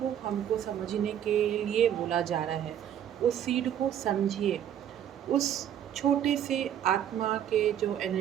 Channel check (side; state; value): left; quieter; 10.1 dB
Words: हमको समझने के लिए बोला जा रहा है। उस सीड को समझिए। उस छोटे से आत्मा के जो